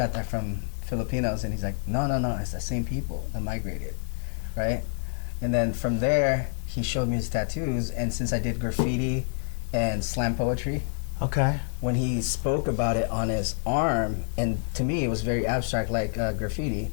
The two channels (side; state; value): right; silent; 60 dB below the other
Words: that from Filipinos. And he's like, no, it's the same people that migrated, right? And then from there, he showed me his tattoos, and since I did graffiti and slam poetry, when he spoke about it on his arm, and to me it was very abstract, like graffiti,